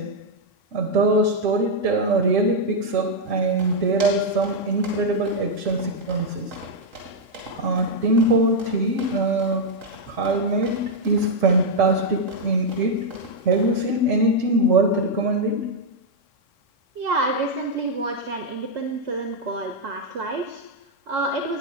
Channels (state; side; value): late; left; 3.6 ms